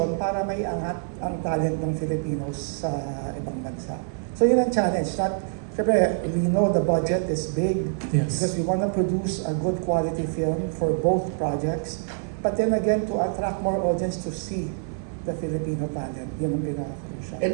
para may angat ang talent ng Filipinos sa ibang bansa. So yun ang challenge. Siyempre, we know the budget is big because we want to produce a good quality film for both projects. But then again, to attract more audience to see the Filipino talent. Yun ang pinaka-crucial.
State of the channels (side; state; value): left; silent; digital silence